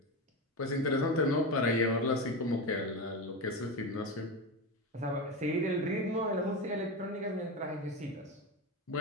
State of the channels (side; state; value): both; normal; correlation 0.19